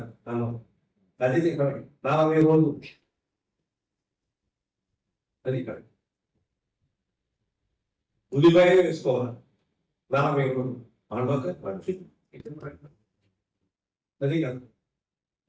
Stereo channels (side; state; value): both; identical; correlation 1.00